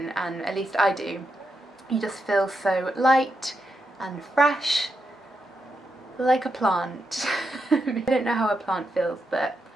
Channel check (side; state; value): both; normal; correlation 0.84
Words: and at least I do. You just feel so light and fresh, like a plant. I don't know how a plant feels, but